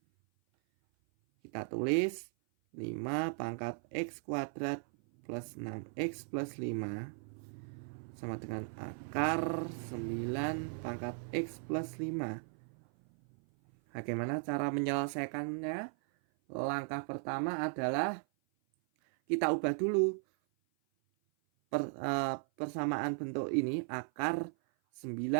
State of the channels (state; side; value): silent; left; 53 dB below the other